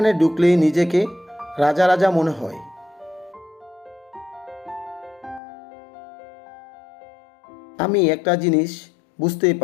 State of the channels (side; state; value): right; drops out; at 5.4 s